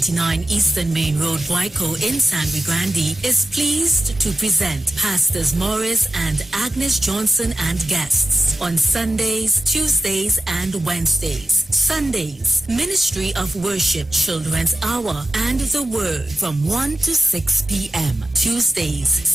Eastern Main Road, Waiko in San Luis Grande is pleased to present Pastors Morris and Agnes Johnson and guests on Sundays, Tuesdays, and Wednesdays. Sundays, Ministry of Worship Children's Hour and the Word from 1 to 6 p.m. Tuesdays,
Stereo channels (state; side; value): normal; both; correlation 0.90